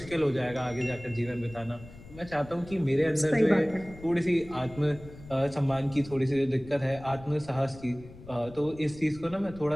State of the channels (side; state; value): left; noise; rumble, 18 dB below the sound